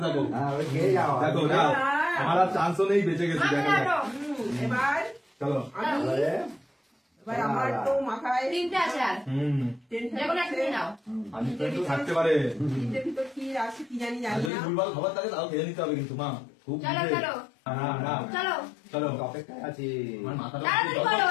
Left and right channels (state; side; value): drops out; right; at 14.5 s